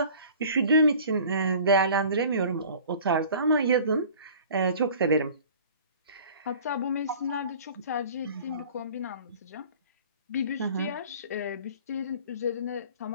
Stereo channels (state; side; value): inverted; both; correlation -0.46